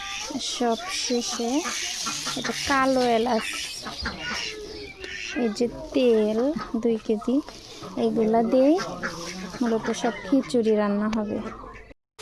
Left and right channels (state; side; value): identical; both; correlation 1.00